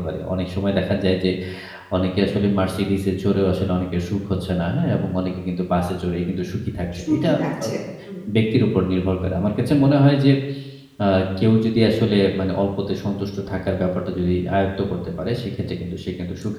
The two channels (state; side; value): identical; both; correlation 1.00